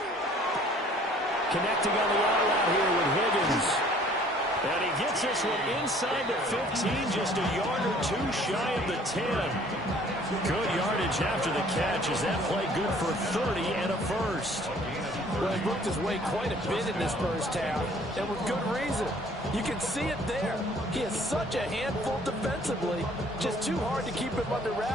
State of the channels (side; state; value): both; normal; correlation 0.56